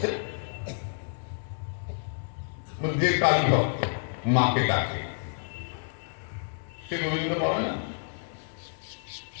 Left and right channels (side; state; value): right; silent; digital silence